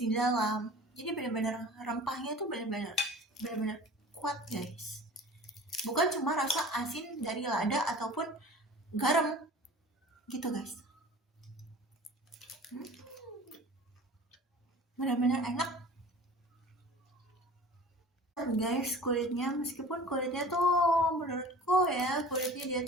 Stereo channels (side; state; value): both; normal; correlation 0.42